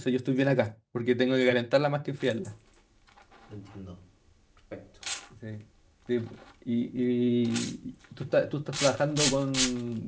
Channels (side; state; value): both; identical; correlation 1.00